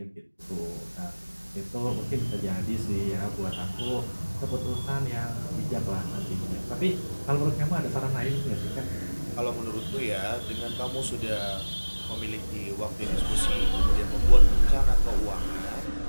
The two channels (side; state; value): both; inverted; correlation -1.00